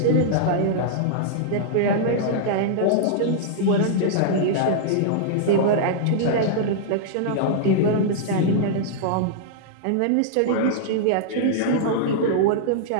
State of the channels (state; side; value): different; both; correlation -0.02